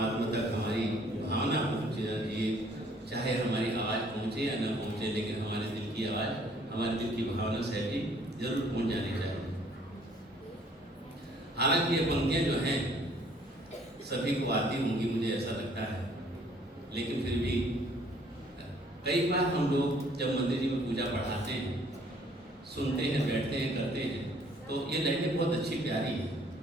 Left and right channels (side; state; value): both; normal; correlation 0.60